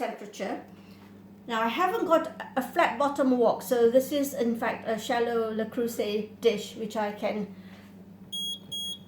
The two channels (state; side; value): identical; both; correlation 1.00